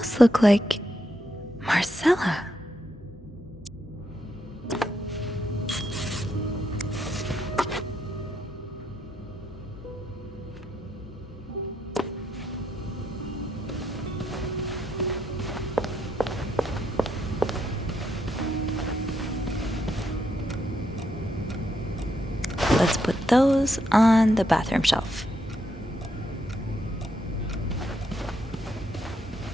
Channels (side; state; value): both; normal; correlation 0.79